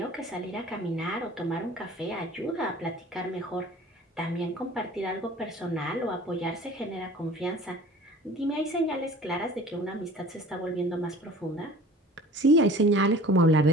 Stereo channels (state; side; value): normal; both; correlation 0.44